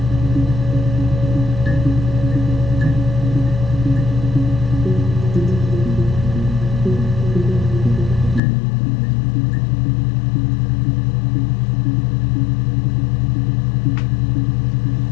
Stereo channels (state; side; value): drops out; right; at 8.4 s